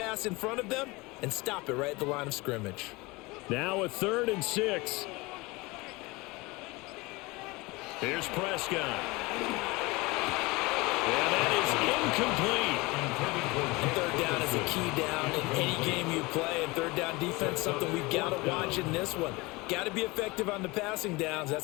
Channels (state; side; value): quieter; right; 23.6 dB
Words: in front of them and stop it right at the line of scrimmage. Now a 3rd and 6. Here's Prescott. And that is incomplete. 3rd down is a key down in any game you play, and 3rd down defense, something we've got to watch in this one. Got to be effective on the passing downs.